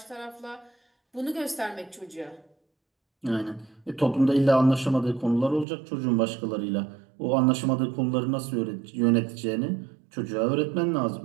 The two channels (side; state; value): left; drops out; at 5.7 s